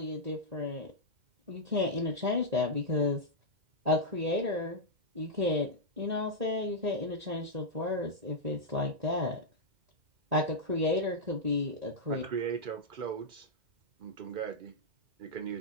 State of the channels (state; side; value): late; left; 2.1 ms